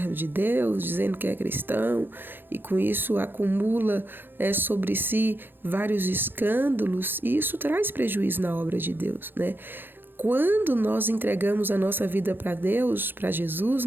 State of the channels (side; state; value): left; late; 0.098 ms